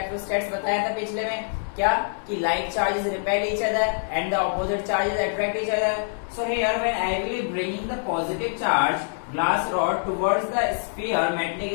बताया था पिछले में, क्या कि like charges repel each other and the opposite charges attract each other. So here when I will be bringing the positive charge glass rod towards the sphere, metallic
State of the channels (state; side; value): silent; right; digital silence